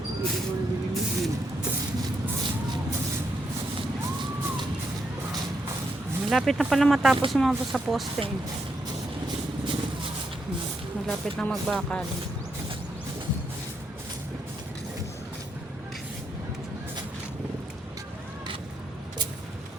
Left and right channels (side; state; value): both; normal; correlation 0.79